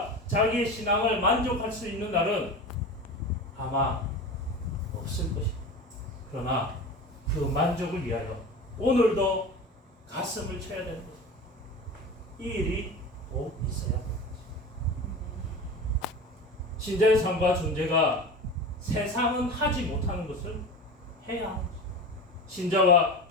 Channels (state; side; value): normal; both; correlation 0.30